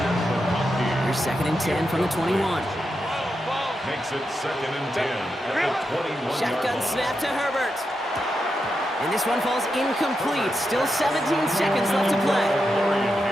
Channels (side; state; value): both; normal; correlation 0.86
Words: McConkey. Here's 2nd and 10 from the 21. Makes it 2nd and 10 at the 21-yard Shotgun line. snap to Herbert. And this one falls incomplete. Still 17 seconds left to play.